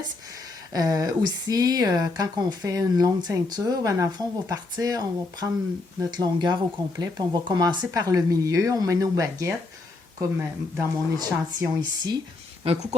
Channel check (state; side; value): quieter; right; 3.5 dB